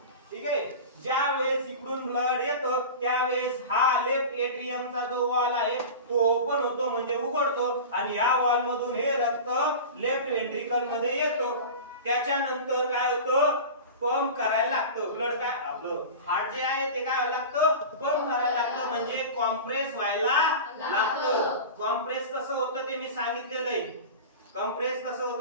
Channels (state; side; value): inverted; both; correlation -0.31